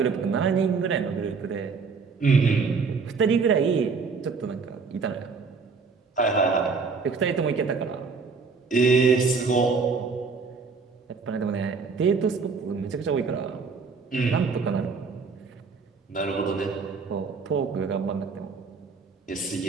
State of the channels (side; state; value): left; quieter; 4.9 dB